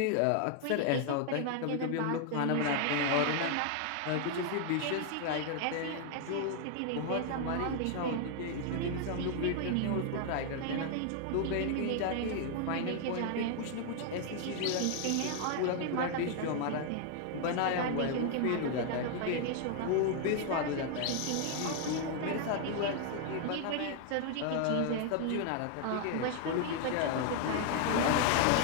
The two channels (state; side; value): different; both; correlation 0.00